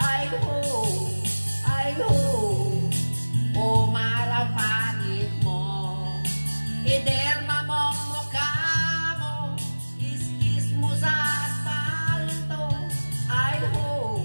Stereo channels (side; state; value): both; inverted; correlation -1.00